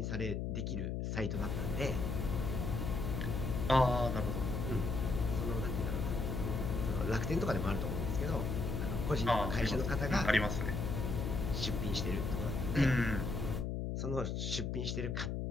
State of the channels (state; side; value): noise; left; hum, 1 dB below the sound